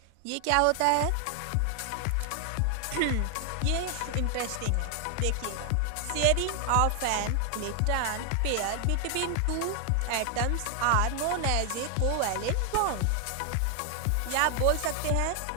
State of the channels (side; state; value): both; different; correlation 0.00